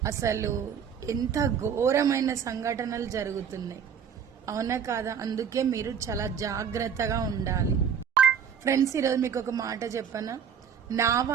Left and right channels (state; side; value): quieter; left; 7.6 dB